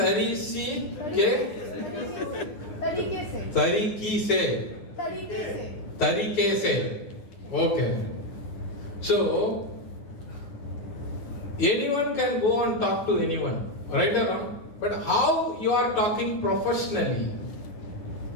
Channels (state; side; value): late; right; 9.3 ms